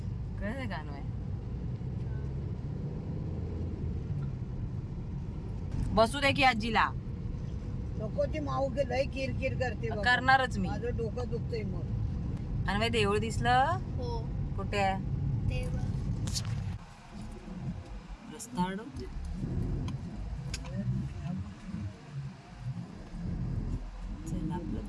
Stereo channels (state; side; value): identical; both; correlation 1.00